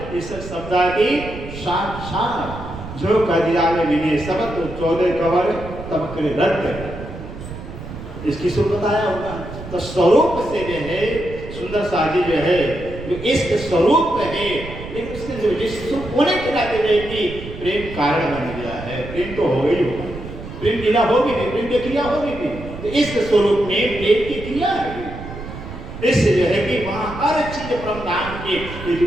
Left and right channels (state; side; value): noise; right; rumble, 11 dB below the sound